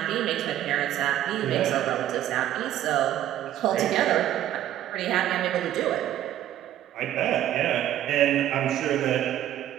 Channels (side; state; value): left; quieter; 12.2 dB